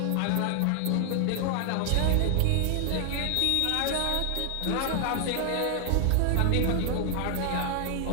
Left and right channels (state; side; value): different; both; correlation 0.00